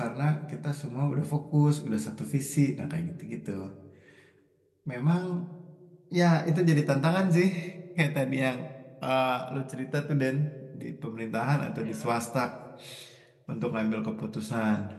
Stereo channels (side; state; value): both; identical; correlation 1.00